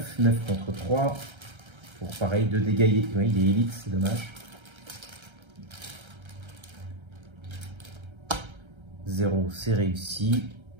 9 contre 3. Pour pareil, 2 dégâts. Oui, il est élite, c'est dommage. 0, c'est réussi.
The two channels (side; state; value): left; late; 1.3 ms